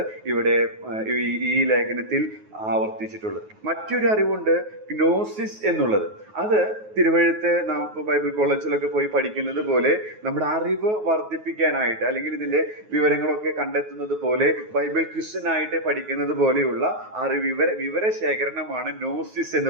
ഇവിടെ ഈ ലേഖനത്തിൽ ആവർത്തിച്ചിട്ടുള്ളത്. മറ്റൊരു അറിവുണ്ട് ഗ്നോസിസ് എന്നുള്ളത്. അത് തിരുവഴുത്ത് നാം ബൈബിൾ കോളേജിലൊക്കെ പോയി പഠിക്കുന്നത് പോലെ നമ്മുടെ അറിവ് വർദ്ധിപ്പിക്കാനായിട്ട്, അല്ലെങ്കിൽ ഇതിന്റെ വിവരങ്ങളൊക്കെ കണ്ടെത്തുന്നത് പോലെ ബൈബിൾ ക്വിസിനായിട്ട് പഠിക്കുന്നത് പോലെയുള്ള വിവരശേഖരണമാണ് ഗ്നോസിസ്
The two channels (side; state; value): left; late; 9.4 ms